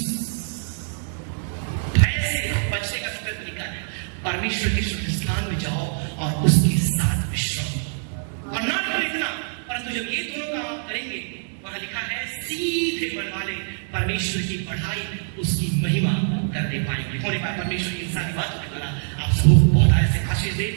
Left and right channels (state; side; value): silent; left; digital silence